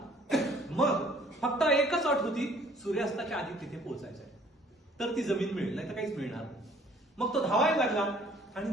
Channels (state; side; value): normal; both; correlation 0.57